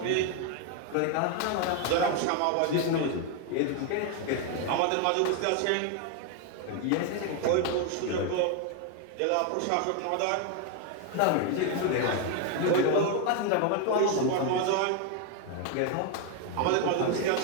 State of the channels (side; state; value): both; different; correlation 0.01